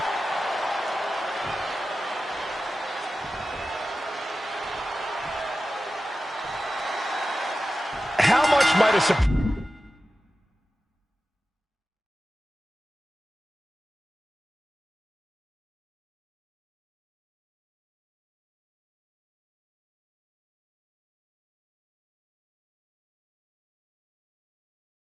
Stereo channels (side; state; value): both; normal; correlation 0.94